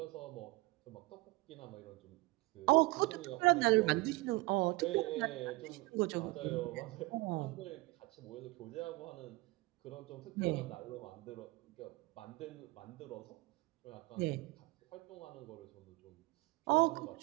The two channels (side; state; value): left; quieter; 22.4 dB